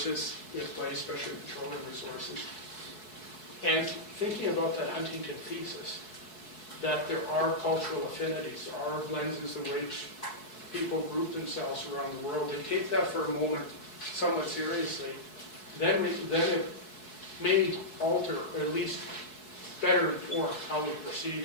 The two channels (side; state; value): right; late; 4.7 ms